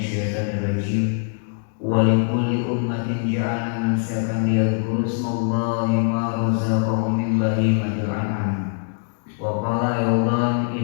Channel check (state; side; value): silent; right; digital silence